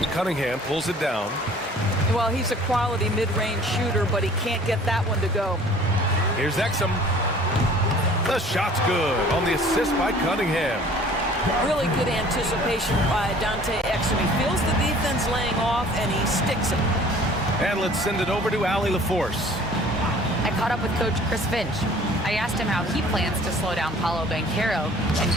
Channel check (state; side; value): normal; both; correlation 0.51